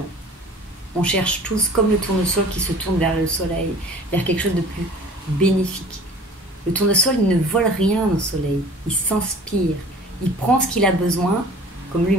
On cherche tous, comme le tournesol qui se tourne vers le soleil, vers quelque chose de plus bénéfique. Le tournesol, il ne vole rien au soleil. Il s'inspire. Il prend ce qu'il a besoin, comme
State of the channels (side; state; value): both; normal; correlation 0.45